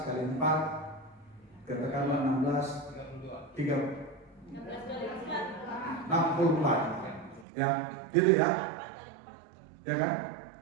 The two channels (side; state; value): left; drops out; at 7.5 s